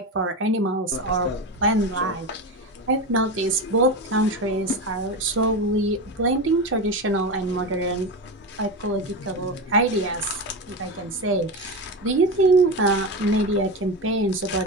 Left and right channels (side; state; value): both; normal; correlation 0.20